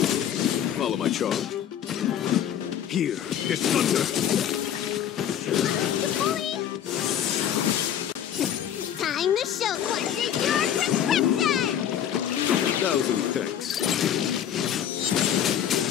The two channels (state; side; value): quieter; right; 9.8 dB